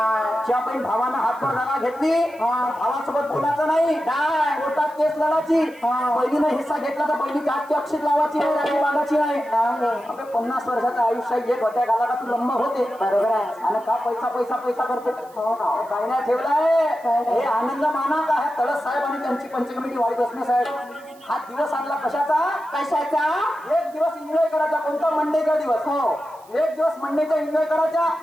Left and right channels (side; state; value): right; noise; hiss, 27 dB below the sound